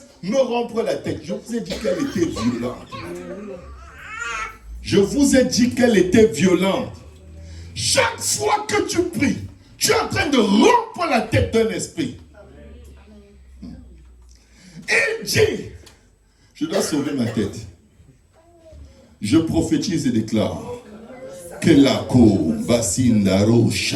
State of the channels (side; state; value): both; identical; correlation 1.00